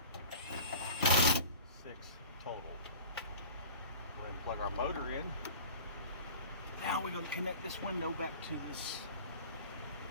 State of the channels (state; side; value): inverted; both; correlation -0.43